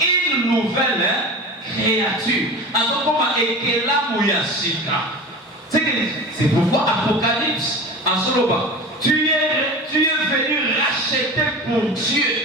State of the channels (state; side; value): normal; both; correlation 0.32